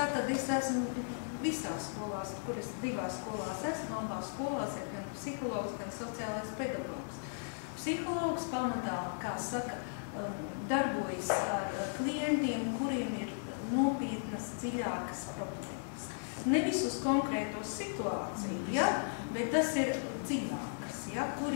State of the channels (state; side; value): silent; right; digital silence